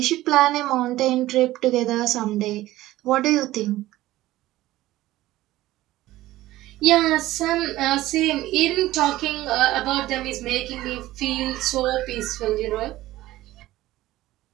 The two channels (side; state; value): left; quieter; 16.2 dB